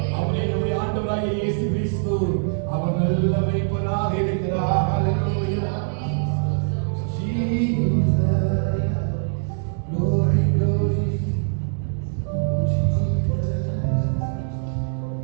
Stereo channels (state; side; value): silent; left; digital silence